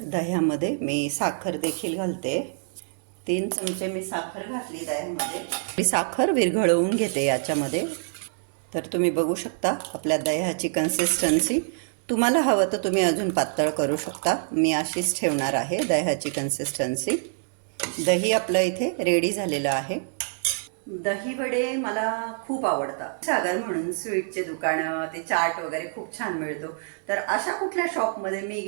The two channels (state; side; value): silent; left; digital silence